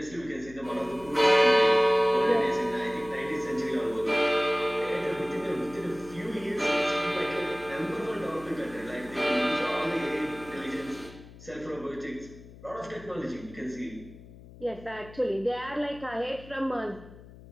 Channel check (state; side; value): noise; left; hum, 19 dB below the sound